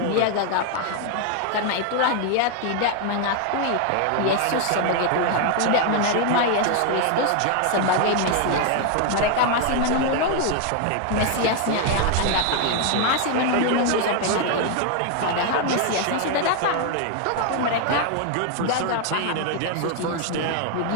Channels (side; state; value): both; different; correlation 0.01